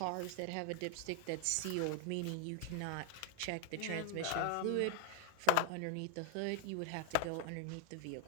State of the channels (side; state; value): both; different; correlation 0.00